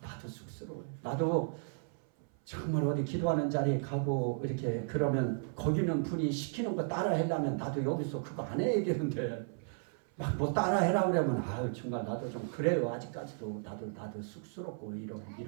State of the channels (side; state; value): left; silent; 55 dB below the other